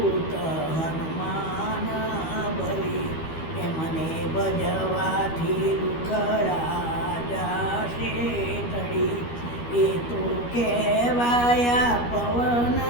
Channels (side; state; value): right; late; 12 ms